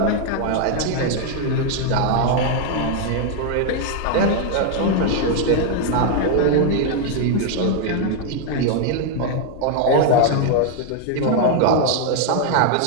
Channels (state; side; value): different; both; correlation 0.00